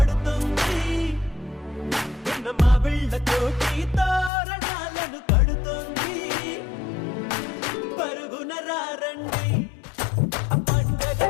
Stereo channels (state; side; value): drops out; right; at 4.3 s